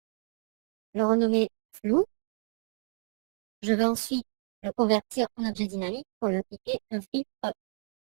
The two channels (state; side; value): silent; left; digital silence